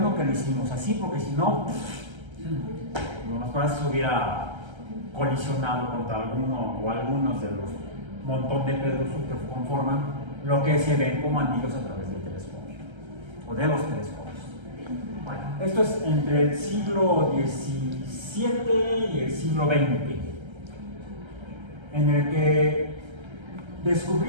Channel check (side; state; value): left; late; 1.3 ms